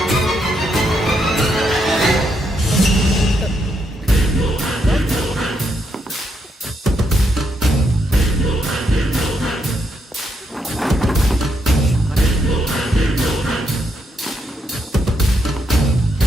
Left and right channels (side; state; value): both; normal; correlation 0.78